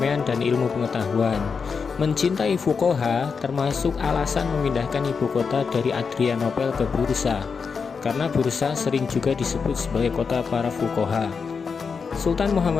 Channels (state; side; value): quieter; right; 5.5 dB